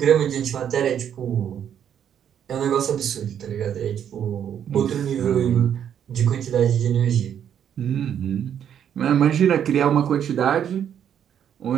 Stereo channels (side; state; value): left; quieter; 9.1 dB